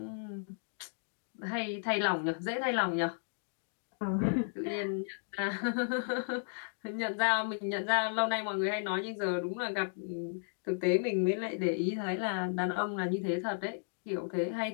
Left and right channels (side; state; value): right; silent; digital silence